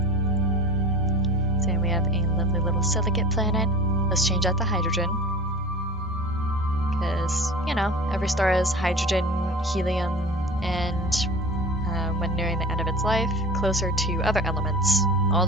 So we have a lovely little silicate planet. Let's change out the hydrogen. Because, you know, every star has hydrogen, helium, and when nearing the end of its life, closer to other elements, all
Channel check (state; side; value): normal; both; correlation 0.36